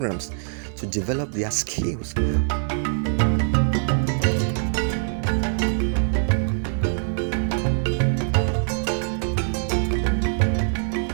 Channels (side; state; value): left; silent; digital silence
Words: to develop their skills.